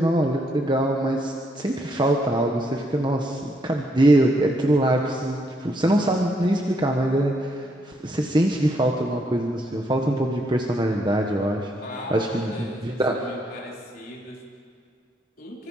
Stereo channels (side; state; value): both; normal; correlation 0.74